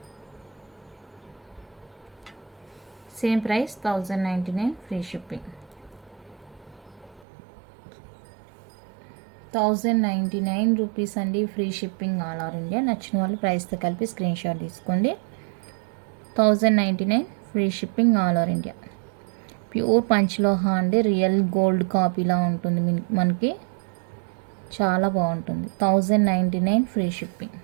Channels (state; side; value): drops out; left; at 7.2 s